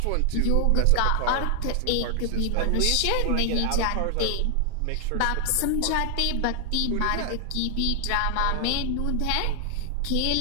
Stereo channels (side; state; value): both; different; correlation 0.00